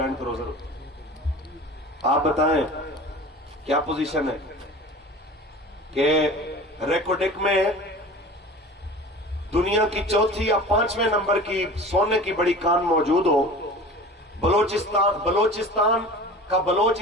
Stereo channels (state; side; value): normal; both; correlation 0.38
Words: کروزر ہوتا۔ آپ بتائیں کیا پوزیشن ہے کہ ریکوڈک میں دنیا کی چوتھی یا 5ویں نمبر کی سونے کی بڑی کان موجود ہو، بلوچستان کا بلوچ